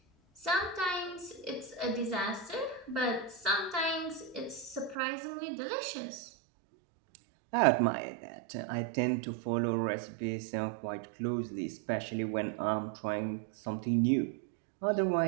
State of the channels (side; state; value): left; drops out; at 5.0 s